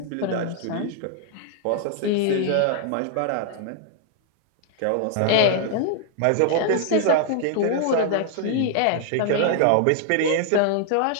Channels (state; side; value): different; both; correlation 0.00